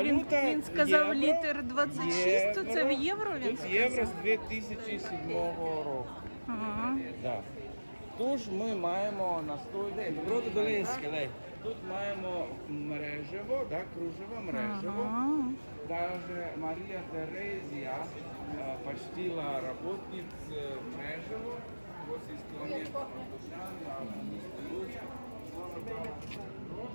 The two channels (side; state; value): both; inverted; correlation -1.00